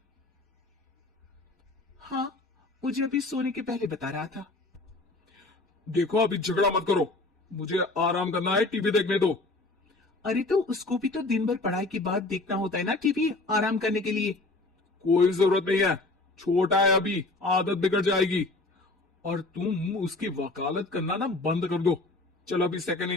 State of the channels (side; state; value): right; quieter; 3.1 dB